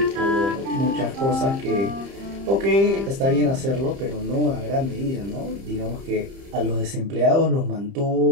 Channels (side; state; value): left; late; 30 ms